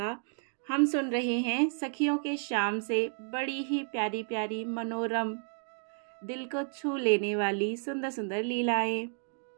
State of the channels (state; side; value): silent; left; 57 dB below the other